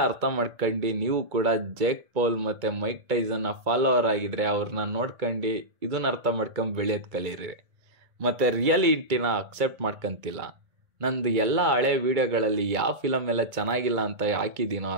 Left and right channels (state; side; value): late; left; 2.2 ms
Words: ಅರ್ಥ ಮಾಡ್ಕೊಂಡು ನೀವು ಕೂಡ ಜೇಕ್ ಪೌಲ್ ಮತ್ತೆ ಮೈಕ್ ಟೈಸನ್ನ ಫಾಲೋವರ್ ಆಗಿದ್ರೆ ಅವ್ರನ್ನ ನೋಡ್ಕೊಂಡು ಇದನ್ನ ಅರ್ಥ ಮಾಡ್ಕೊಂಡ್ ಬೆಳೆಯೋದ್ ಕಲೀರಿ. ಮತ್ತೆ ರಿಯಾಲಿಟಿನ ಅಕ್ಸೆಪ್ಟ್ ಮಾಡ್ಕೊಂತಿಲ್ಲ. ನಂದು ಎಲ್ಲ ಹಳೆ ವಿಡಿಯೋಗಳಲ್ಲಿ ಯಾವ ಫಿಲಮ್ ಎಲ್ಲ ಚೆನ್ನಾಗಿಲ್ಲ ಅಂತ ಹಾಕಿದ್ದೀನೋ